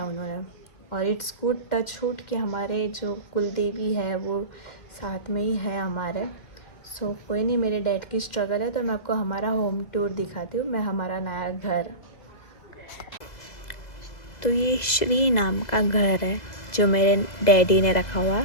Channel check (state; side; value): late; right; 2.0 ms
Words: उन्होंने। और इट्स गुड टच वुड कि हमारे जो कुलदेवी है वो साथ में ही है हमारे। सो कोई नहीं, मेरे डैड की स्ट्रगल है तो मैं आपको हमारा होम टूर दिखाती हूँ, मैं हमारा नया घर। तो ये श्री नाम का घर है जो मेरे डैडी ने रखा हुआ।